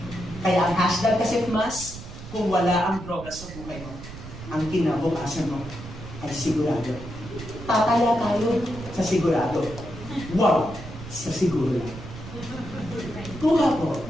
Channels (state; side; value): noise; right; rumble, 13 dB below the sound